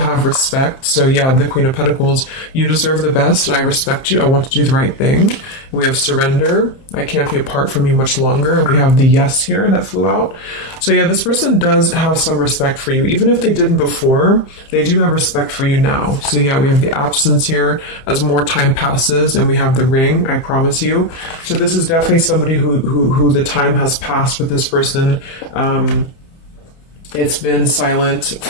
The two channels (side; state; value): right; late; 30 ms